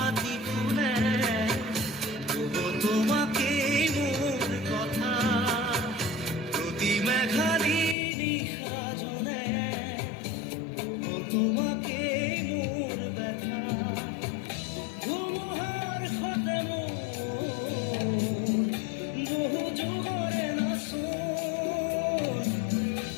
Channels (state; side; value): drops out; right; at 8.0 s